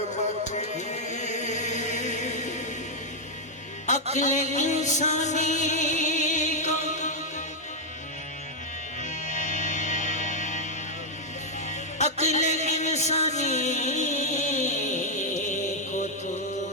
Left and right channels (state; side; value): normal; both; correlation -0.02